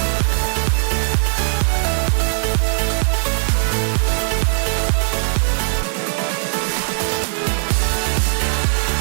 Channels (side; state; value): left; silent; digital silence